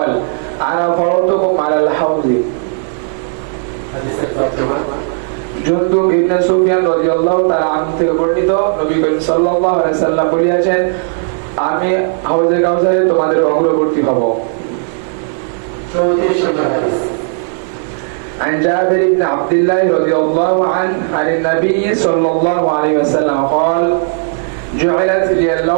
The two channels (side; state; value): left; silent; digital silence